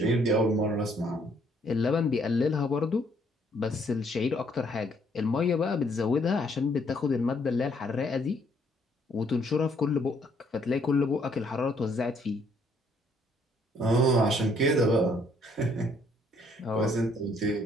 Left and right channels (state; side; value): normal; both; correlation 0.66